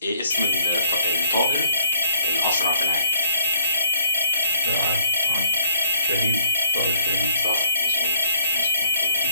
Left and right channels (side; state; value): both; inverted; correlation -0.64